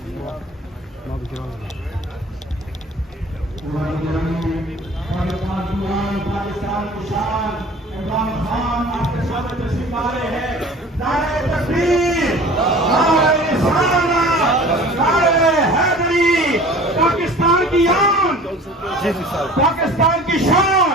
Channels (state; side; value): normal; both; correlation 0.44